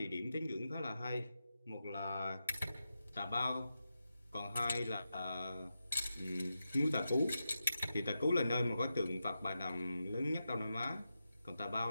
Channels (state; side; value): inverted; both; correlation -0.89